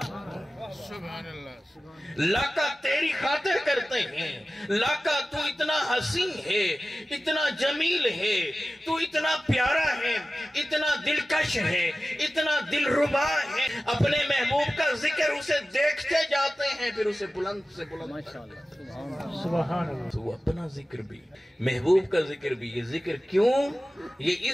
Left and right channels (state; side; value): normal; both; correlation 0.95